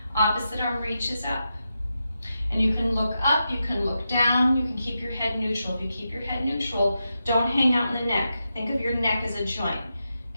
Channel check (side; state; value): both; inverted; correlation -0.88